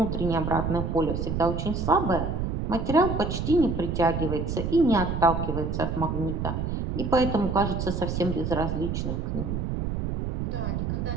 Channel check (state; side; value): noise; right; rumble, 2 dB below the sound